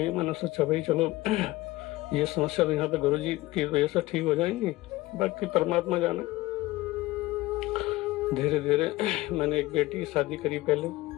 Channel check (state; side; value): quieter; right; 18.6 dB